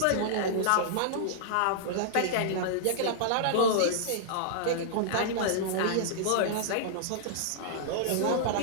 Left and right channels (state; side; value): different; both; correlation -0.02